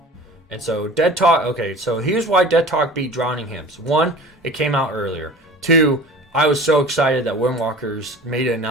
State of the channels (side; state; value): both; normal; correlation 0.40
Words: And so Dead Talk. Okay, so here's why Dead Talk beat Drowning Hymns. One, it came out earlier. Two, I was so excited that Windwalkers made an